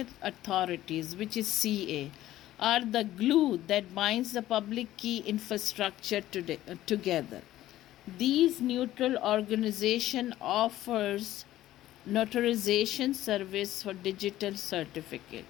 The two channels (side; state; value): right; quieter; 14.3 dB